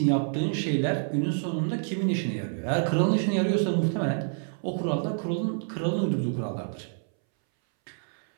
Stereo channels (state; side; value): silent; left; 60 dB below the other